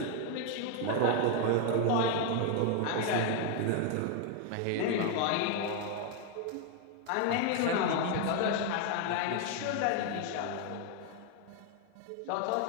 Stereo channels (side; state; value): both; different; correlation 0.01